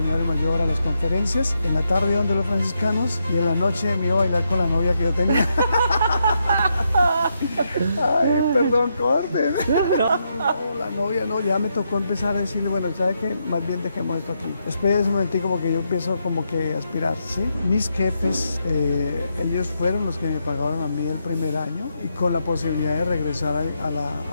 a las conferencias. En la tarde iba donde los franciscanos y en la noche me iba a bailar con la novia que yo tenía. Ay, perdón, corten. No, la novia no, ya me tocó empezar a decirle, bueno, ¿sabe qué? Más bien dejemos esto aquí. Después de ese momentico como que yo empiezo como que a aspirar, ¿sí? Mis jefes, ellos fueron los que me pagaron a mí el primer año y con la posibilidad de regresar a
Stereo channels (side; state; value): both; inverted; correlation -0.81